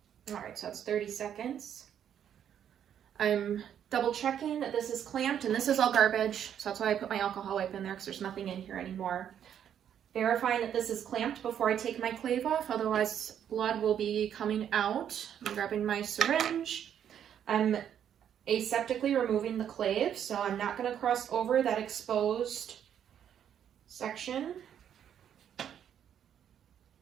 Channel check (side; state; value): left; quieter; 9.3 dB